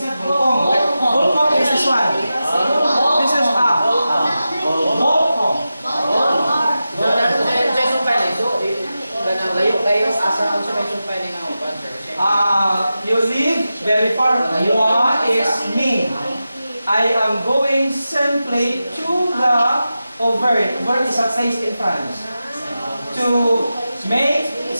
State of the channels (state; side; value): inverted; both; correlation -0.92